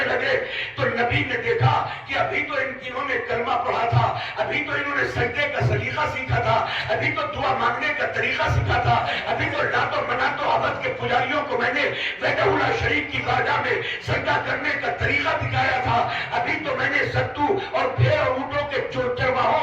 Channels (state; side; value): identical; both; correlation 1.00